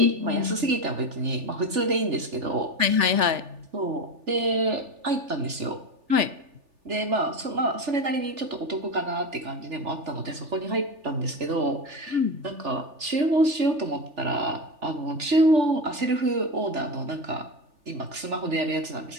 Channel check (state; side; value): late; left; 3.4 ms